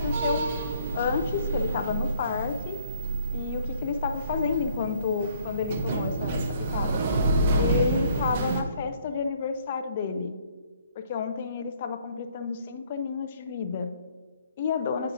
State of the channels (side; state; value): both; inverted; correlation -0.63